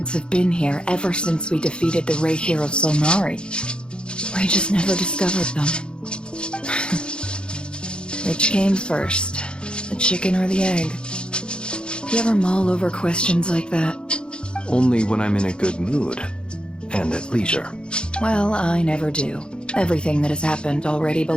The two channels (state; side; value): late; right; 0.052 ms